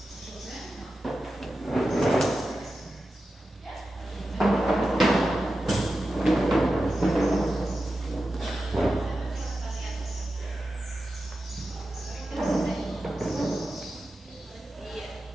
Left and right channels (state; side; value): normal; both; correlation 0.92